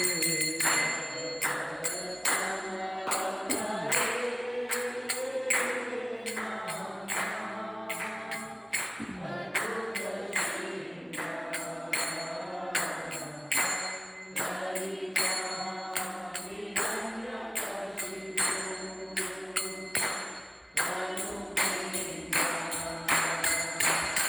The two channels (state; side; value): identical; both; correlation 1.00